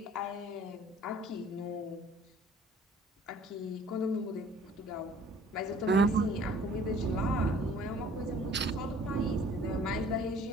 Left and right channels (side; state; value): both; normal; correlation 0.52